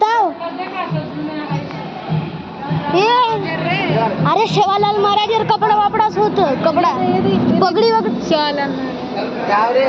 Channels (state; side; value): identical; both; correlation 1.00